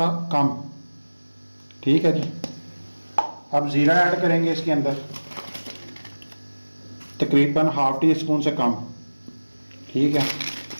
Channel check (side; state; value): both; inverted; correlation -1.00